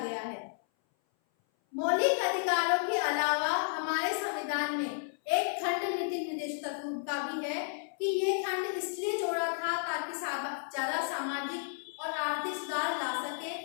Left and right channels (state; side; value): silent; right; 56 dB below the other